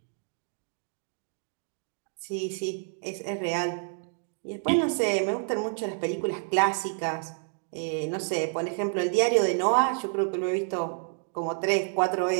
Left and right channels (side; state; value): left; silent; 59 dB below the other